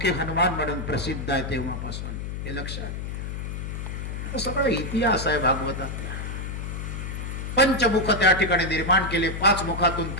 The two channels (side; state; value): left; noise; hum, 5 dB below the sound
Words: हनुमान म्हणून प्रसिद्ध आहे तेव्हापासून. हे लक्षात, सगळा इतिहास आहे भागवतातला. पंचमुख त्या ठिकाणी निर्माण केले, 5 मुखातून